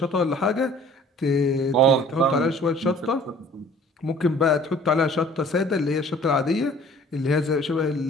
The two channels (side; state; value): both; normal; correlation 0.51